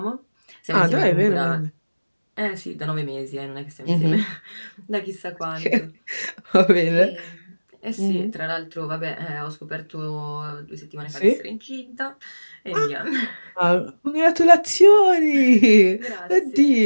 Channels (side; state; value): both; inverted; correlation -1.00